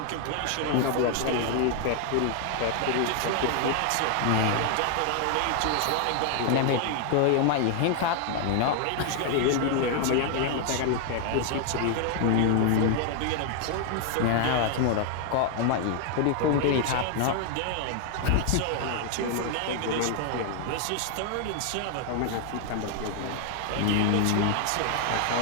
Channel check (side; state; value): both; different; correlation 0.00